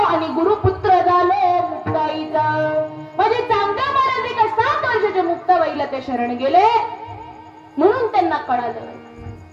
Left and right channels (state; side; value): identical; both; correlation 1.00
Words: आणि गुरुपुत्र झालो मुक्ताईचा. माझे चांगदेव महाराज एका 7 वर्षाच्या मुक्ताबाईला ते शरण गेले म्हणून त्यांना कळालं.